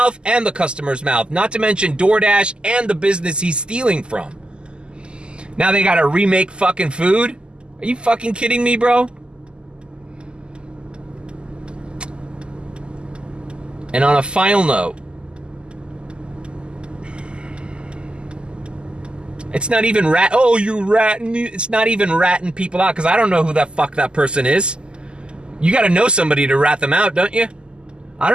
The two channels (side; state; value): left; late; 0.049 ms